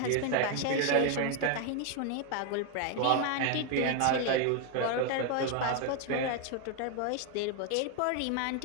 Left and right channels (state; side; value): different; both; correlation 0.01